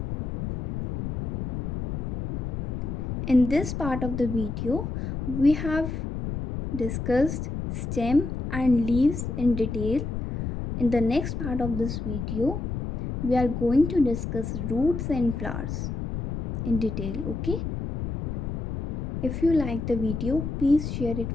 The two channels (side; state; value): left; noise; rumble, 3 dB below the sound